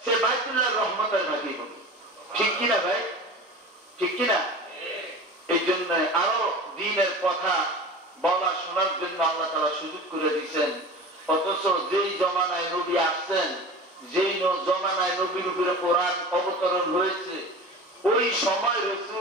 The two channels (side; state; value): both; normal; correlation 0.35